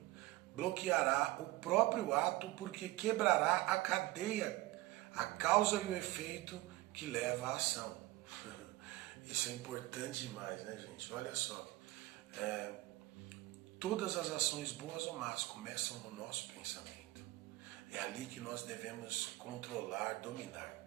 bloqueará o próprio ato porque quebrará a cadeia, a causa e o efeito que leva à ação. Isso é importante demais, né, gente? Olha só. Todas as ações boas ou más começam no nosso pensamento. É ali que nós devemos controlar, dominar.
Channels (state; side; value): quieter; left; 19.0 dB